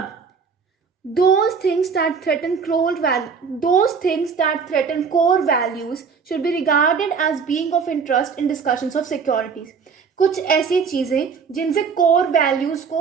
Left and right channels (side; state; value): left; quieter; 5.8 dB